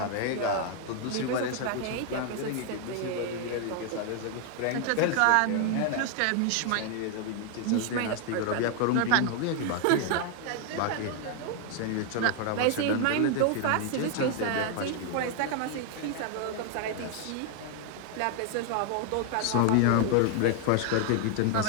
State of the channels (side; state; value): both; different; correlation 0.00